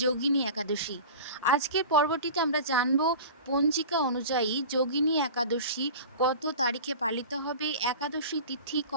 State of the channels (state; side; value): inverted; both; correlation -0.35